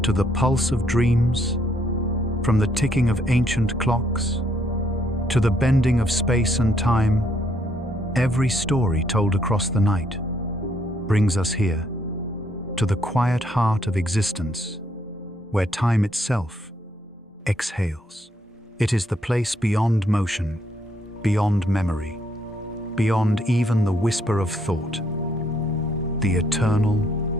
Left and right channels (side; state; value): both; normal; correlation 0.71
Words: to the pulse of dreams, from the ticking of ancient clocks to the bending of space and time, every story told across the night brings us here, to the quiet heart of existence, where time itself exhales. It is the place beyond motion, beyond memory, beyond even the whisper of thought. The eternal